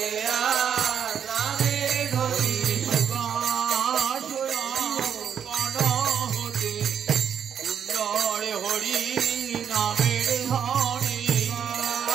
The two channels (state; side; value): quieter; left; 8.2 dB